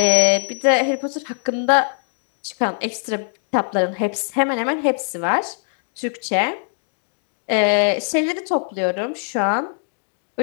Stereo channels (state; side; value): silent; right; digital silence